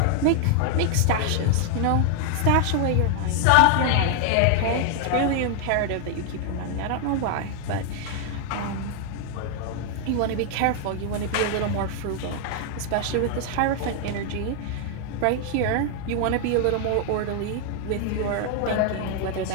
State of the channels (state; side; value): different; both; correlation 0.00